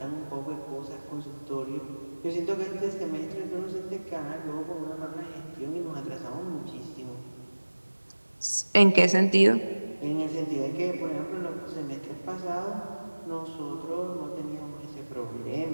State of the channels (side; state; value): both; inverted; correlation -1.00